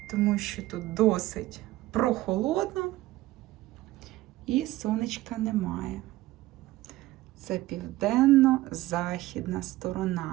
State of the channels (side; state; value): left; quieter; 17.1 dB